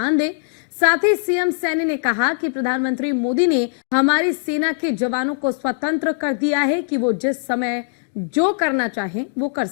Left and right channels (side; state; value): right; silent; digital silence